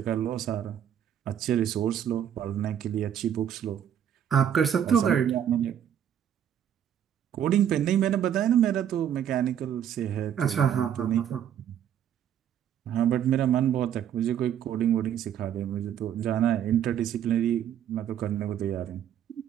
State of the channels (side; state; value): left; quieter; 9.6 dB